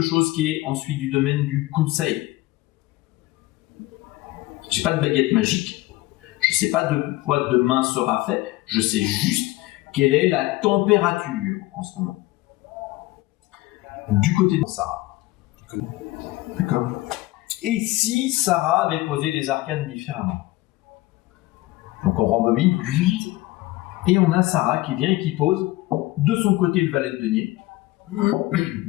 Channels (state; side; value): quieter; right; 18.9 dB